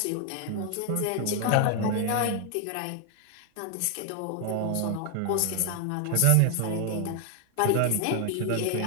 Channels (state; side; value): different; both; correlation 0.00